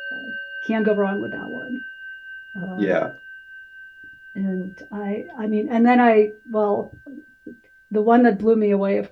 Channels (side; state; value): both; identical; correlation 1.00